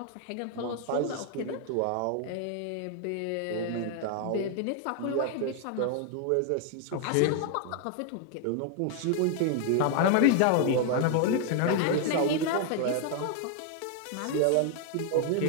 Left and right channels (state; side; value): different; both; correlation 0.00